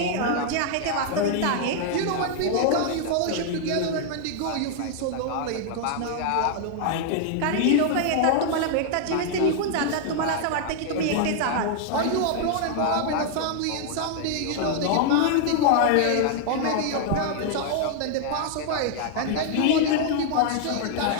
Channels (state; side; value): different; both; correlation 0.00